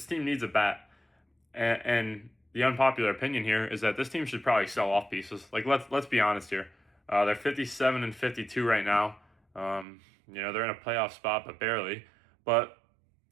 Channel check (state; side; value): drops out; left; at 9.9 s